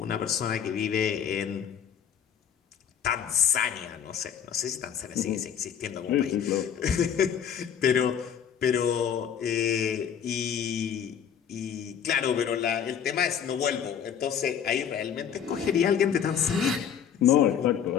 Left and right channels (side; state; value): right; quieter; 8.3 dB